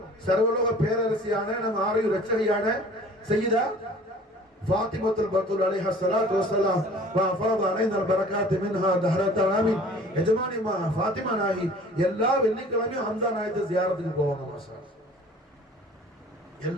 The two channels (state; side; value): normal; both; correlation 0.48